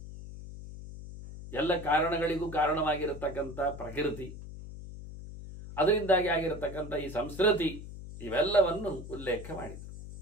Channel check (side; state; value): left; noise; hum, 12 dB below the sound